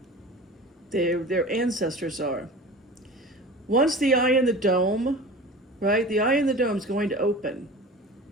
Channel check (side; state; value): both; normal; correlation 0.36